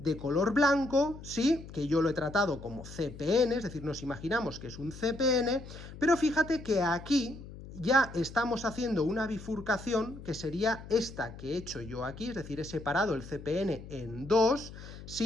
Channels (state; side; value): noise; left; hum, 14 dB below the sound